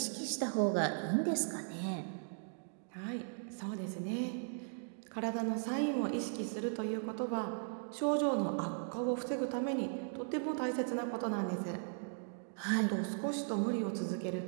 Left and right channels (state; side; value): silent; left; digital silence